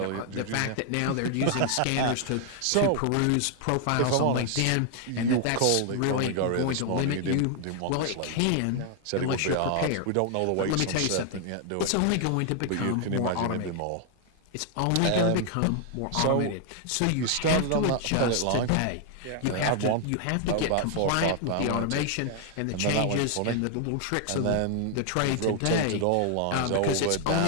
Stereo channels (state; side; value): different; both; correlation 0.00